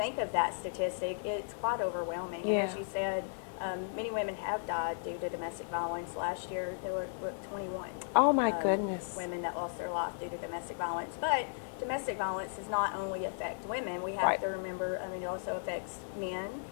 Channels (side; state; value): right; silent; digital silence